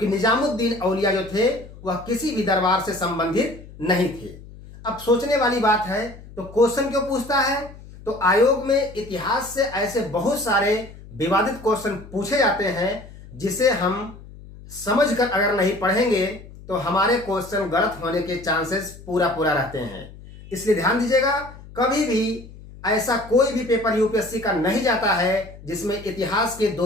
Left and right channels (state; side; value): noise; left; hum, 18 dB below the sound